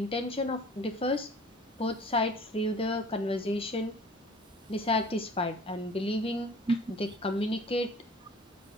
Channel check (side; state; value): both; normal; correlation 0.48